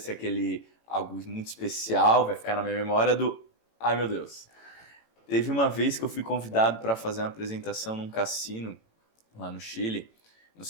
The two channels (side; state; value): right; late; 18 ms